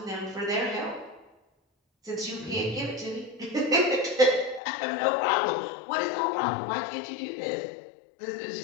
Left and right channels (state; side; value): drops out; right; at 4.6 s